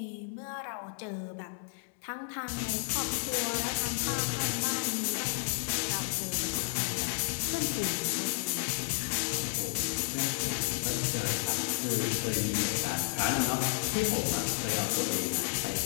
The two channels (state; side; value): silent; right; digital silence